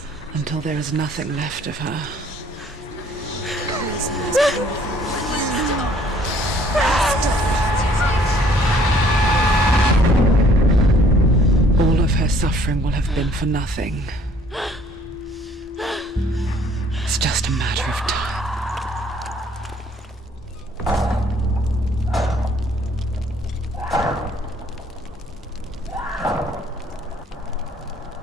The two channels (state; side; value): normal; both; correlation 0.59